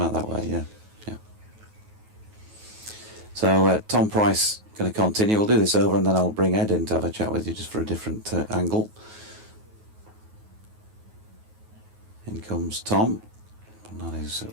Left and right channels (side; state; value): left; late; 9.3 ms